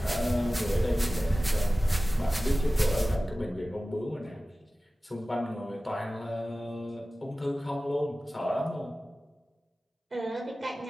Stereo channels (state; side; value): normal; both; correlation 0.96